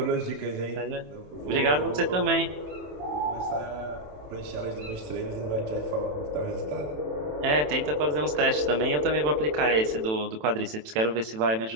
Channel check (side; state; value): left; late; 27 ms